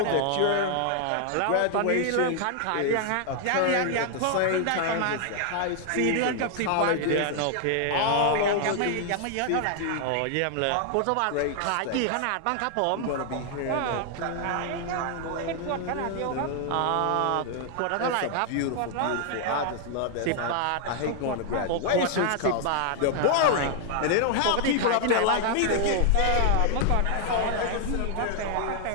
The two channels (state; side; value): different; both; correlation 0.00